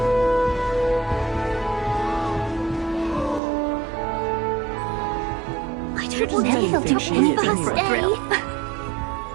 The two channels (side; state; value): left; drops out; at 3.4 s